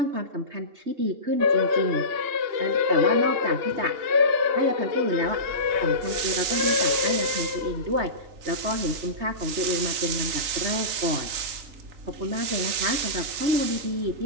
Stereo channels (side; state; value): left; late; 3.7 ms